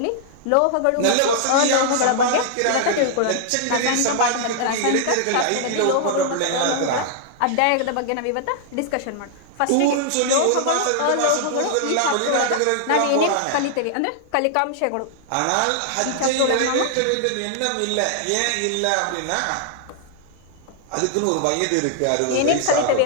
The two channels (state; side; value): different; both; correlation -0.01